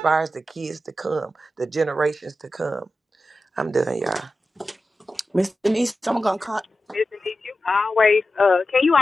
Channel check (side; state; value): both; normal; correlation 0.92